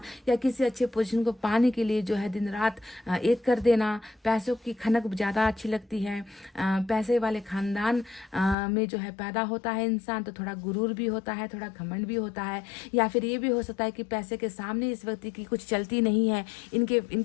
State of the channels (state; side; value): drops out; right; at 8.6 s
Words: या किसी अच्छे पोजीशन को पाने के लिए जो है दिन रात एक कर देना। पैसों की खनक ज़्यादा अच्छी लगती है, पैसे वाले खानदान में जो है पैदा होता है इंसान, तो थोड़ा गुरूर भी होता है, थोड़ा घमंड भी होता है। या फिर ये भी हो सकता है कि पैसे के सामने इस व्यक्ति की कुछ चलती नहीं है,